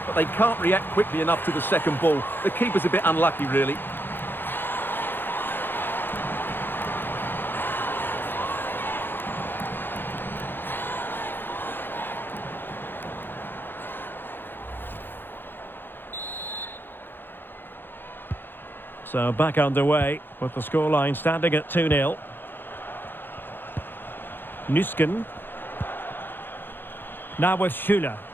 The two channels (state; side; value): late; right; 0.099 ms